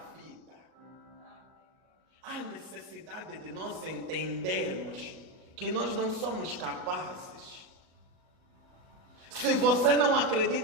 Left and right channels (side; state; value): left; late; 38 ms